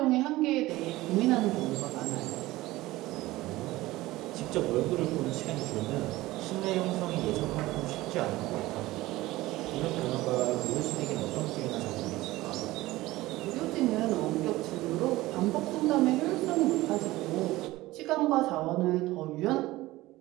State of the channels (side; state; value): left; quieter; 18.1 dB